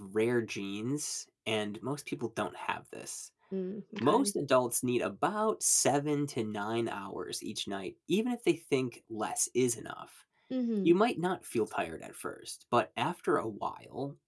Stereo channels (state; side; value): identical; both; correlation 1.00